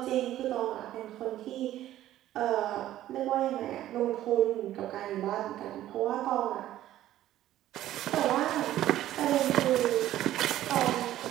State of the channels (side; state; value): left; quieter; 13.4 dB